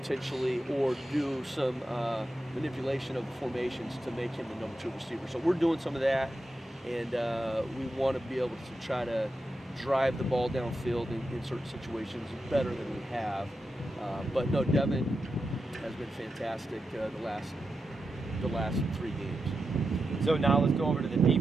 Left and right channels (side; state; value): both; normal; correlation 0.89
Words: or do some manipulation of the formations to make him the number 2 receiver. So we're doing some of that, and we want to be able to try to drive the ball downfield in certain situations better than we have. But no, Devin has been fantastic the last 3 games. So now let's go over to the